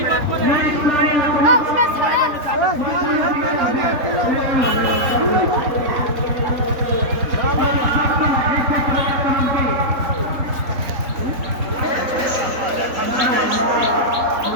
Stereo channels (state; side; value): late; left; 3.9 ms